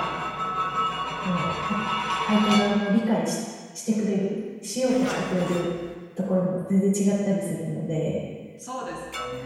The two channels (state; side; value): identical; both; correlation 1.00